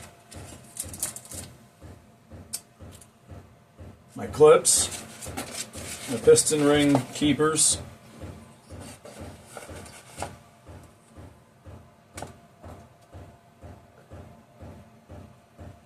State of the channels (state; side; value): identical; both; correlation 1.00